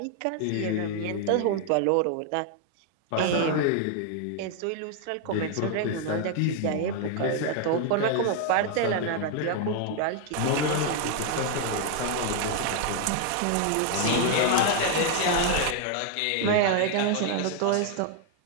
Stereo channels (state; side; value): different; both; correlation 0.00